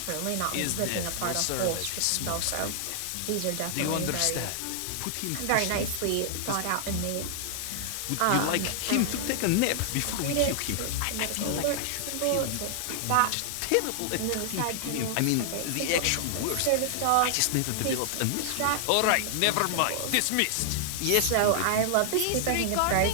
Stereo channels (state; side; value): different; both; correlation -0.01